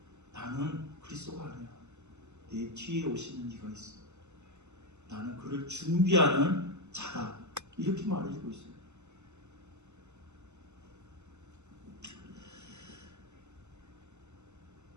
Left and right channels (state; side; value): late; left; 0.83 ms